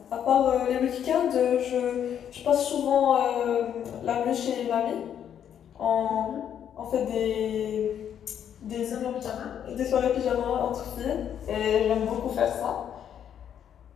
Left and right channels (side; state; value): right; quieter; 9.2 dB